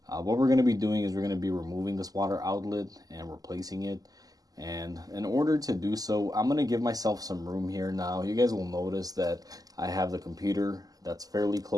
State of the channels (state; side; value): late; left; 0.17 ms